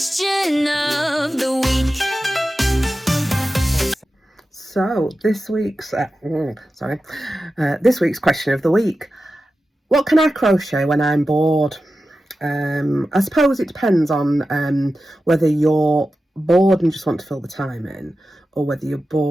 of the week. So this week's this week's question of the week: what can I crochet when I'm bored? I suppose it depends on whether you're bored and just want to fill the time in, or whether you're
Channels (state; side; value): normal; both; correlation 0.93